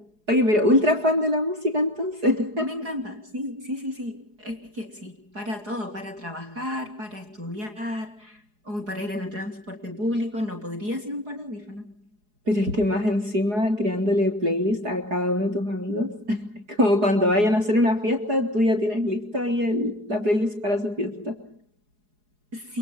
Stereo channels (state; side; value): late; left; 4.8 ms